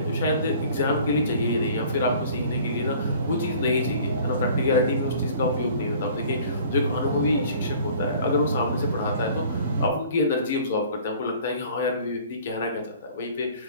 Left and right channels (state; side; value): inverted; both; correlation -0.50